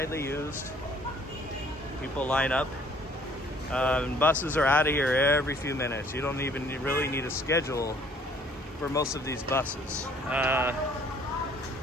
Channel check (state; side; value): normal; both; correlation 0.58